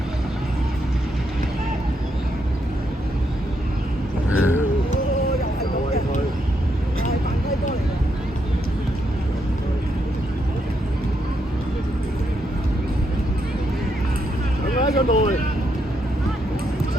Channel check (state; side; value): normal; both; correlation 0.79